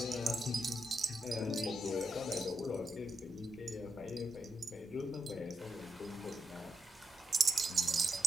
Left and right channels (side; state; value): both; normal; correlation 0.83